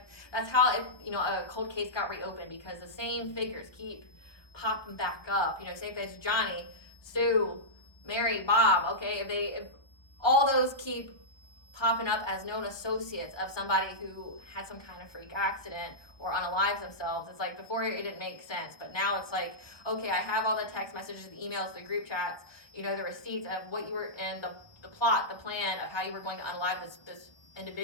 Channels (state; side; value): late; right; 1.3 ms